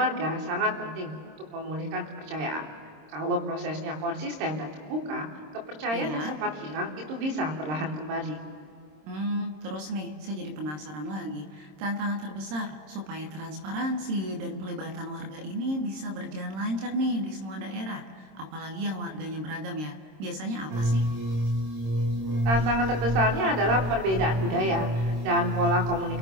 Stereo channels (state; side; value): late; left; 26 ms